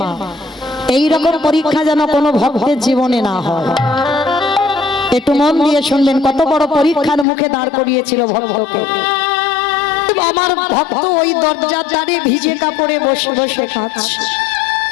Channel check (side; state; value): right; drops out; at 7.2 s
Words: এইরকম পরীক্ষা যেন কোনো ভক্তের জীবনে না হয়। একটু মন দিয়ে শুনবেন, কত বড় পরীক্ষার মুখে দাঁড় করিয়েছিল ভক্তকে। আমার ভক্ত ওই দরজার ধারে ভিজে কাপড়ে বসে বসে কাঁদছে।